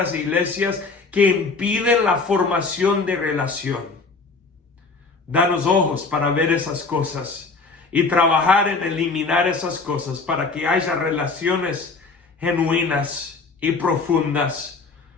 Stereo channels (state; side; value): quieter; right; 4.1 dB